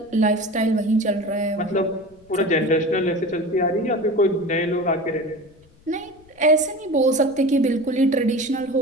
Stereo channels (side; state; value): left; noise; rumble, 29 dB below the sound